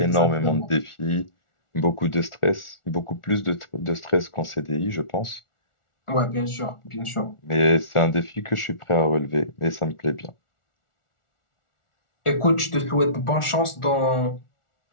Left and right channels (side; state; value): right; late; 1.4 ms